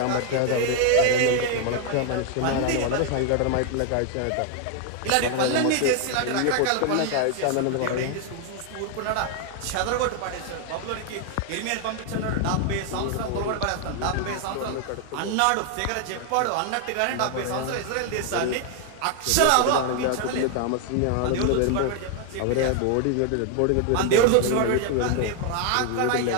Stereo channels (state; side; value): different; both; correlation 0.00